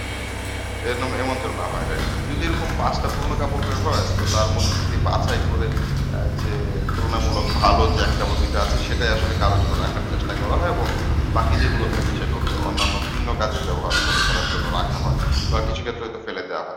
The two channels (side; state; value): both; identical; correlation 1.00